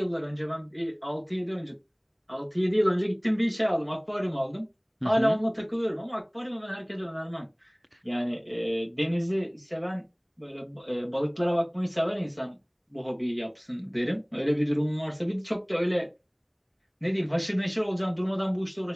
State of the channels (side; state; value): both; identical; correlation 1.00